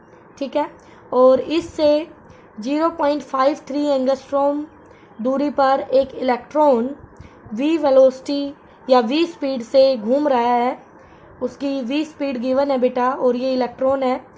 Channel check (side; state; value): both; identical; correlation 1.00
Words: ठीक है, और इससे 0.53 एंगस्ट्रॉम दूरी पर एक इलेक्ट्रॉन v वेलोसिटी या v स्पीड से घूम रहा है। उसकी v स्पीड गिवन है बेटा और ये इलेक्ट्रॉन है,